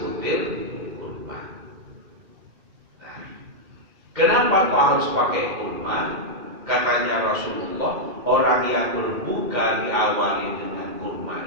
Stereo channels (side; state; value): left; late; 2.2 ms